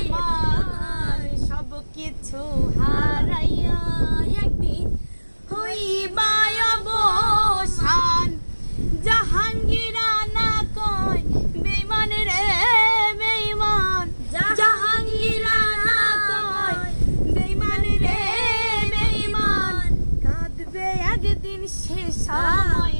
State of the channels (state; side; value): inverted; both; correlation -1.00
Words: সব কিছু হারাইয়া একদিন হইবা অবসান। জাহাঙ্গীরা না কয় বেঈমান রে বেঈমান, জাহাঙ্গীরা না কয় বেঈমান রে বেঈমান। কাঁদবে একদিন সে সময়,